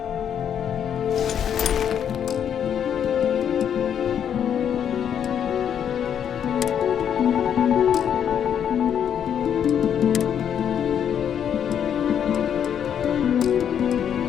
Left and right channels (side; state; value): right; quieter; 8.8 dB